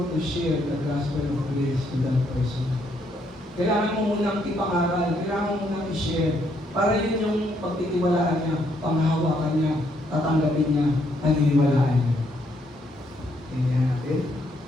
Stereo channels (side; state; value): both; normal; correlation 0.73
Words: to share the gospel of grace to that person. Kailangan mo munang ipangaral, kailangan mo munang i-share, para yun yung pagtitiwalaan niya, panghawakan niya, tatanggapin niya, paniniwalaan niya. Tingnan natin.